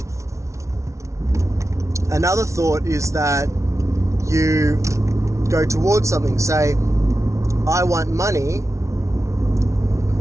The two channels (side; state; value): left; late; 0.14 ms